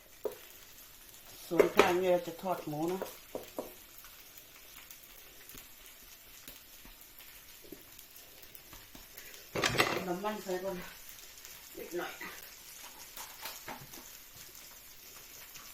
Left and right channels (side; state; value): both; identical; correlation 1.00